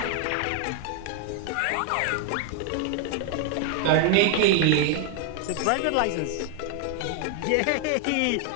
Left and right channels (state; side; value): different; both; correlation 0.00